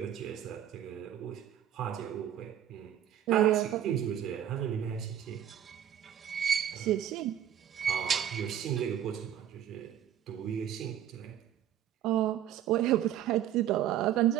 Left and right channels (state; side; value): quieter; left; 10.5 dB